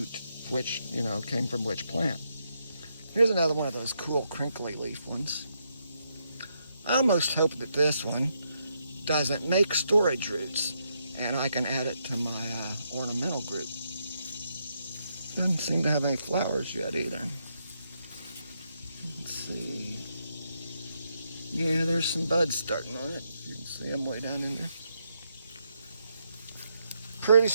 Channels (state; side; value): inverted; both; correlation -0.79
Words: came from which plant. Here's another one of those cool crinkly leaf ones. I almost hope that this one doesn't make storage roots and I can add it to my ornamental group. Doesn't seem to have any flowers yet either. Let's see. Yeah, there's some buds starting on it. You can see them way down in there. Pretty